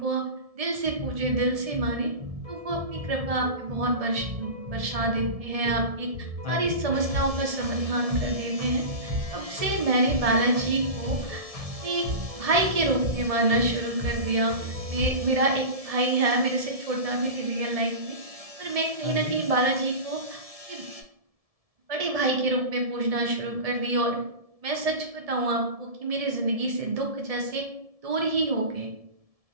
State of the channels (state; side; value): late; left; 1.7 ms